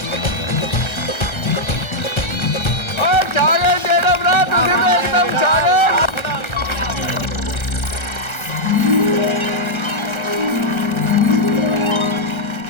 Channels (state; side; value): late; right; 1.3 ms